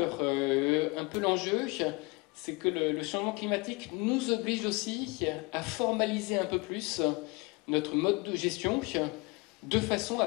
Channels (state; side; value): quieter; right; 26.7 dB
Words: un peu l'enjeu, c'est que le changement climatique nous oblige aussi à formaliser un peu plus notre mode de gestion de façon